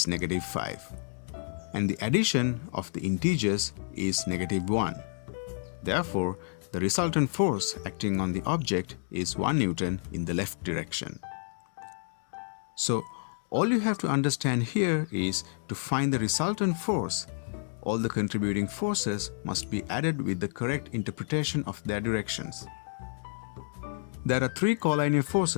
negative 5. And the addition of the integers is negative 1. Therefore, the resultant force acting on the object is 1 newton in the left direction. So, all you have to understand here is to find the resultant force, all the contributing forces must be added with the correct interpretation of their directions. There are 3 col-linear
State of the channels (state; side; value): silent; right; digital silence